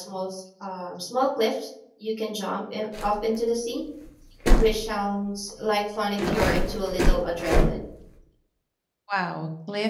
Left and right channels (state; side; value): identical; both; correlation 1.00